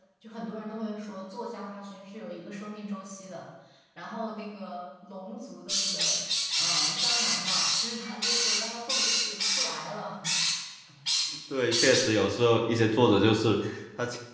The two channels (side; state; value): both; identical; correlation 1.00